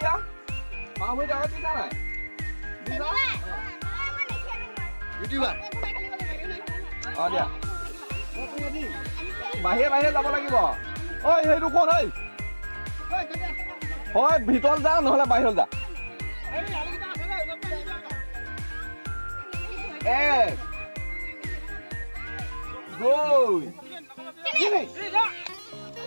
বাওঁ ভৰিটো আগত দিছা নাই দিয়া বাহিৰে যাব লাগিব ঐ সেইটো কোন হয় ভিতৰত যা নহ'লে বাহিৰত যা এক দুই তিনি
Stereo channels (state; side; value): inverted; both; correlation -1.00